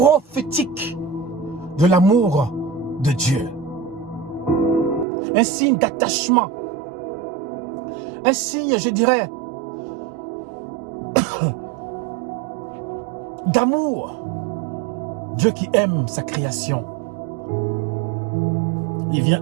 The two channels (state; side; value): drops out; left; at 5.1 s